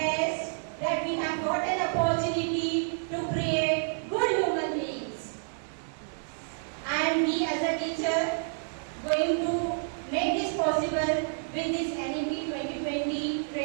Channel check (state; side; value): silent; left; digital silence